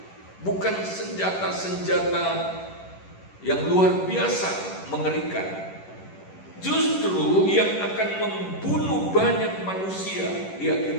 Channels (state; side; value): late; right; 11 ms